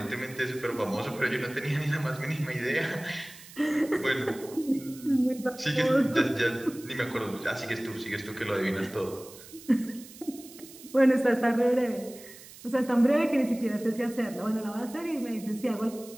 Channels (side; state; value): right; noise; hiss, 18 dB below the sound